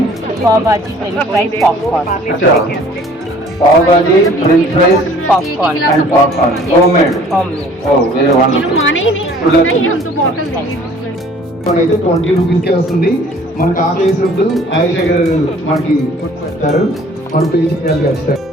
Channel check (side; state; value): both; normal; correlation 0.53